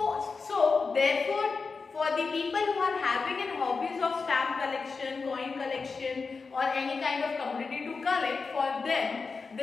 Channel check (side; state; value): right; quieter; 4.6 dB